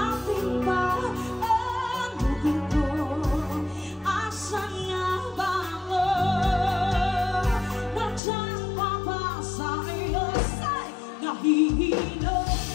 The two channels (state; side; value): drops out; right; at 8.2 s